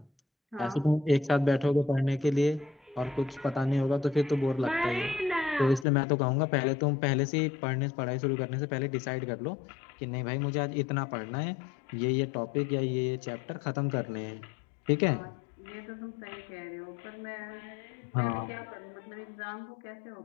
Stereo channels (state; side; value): drops out; right; at 5.9 s